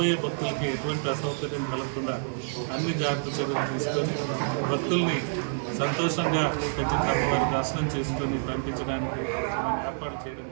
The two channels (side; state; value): left; silent; digital silence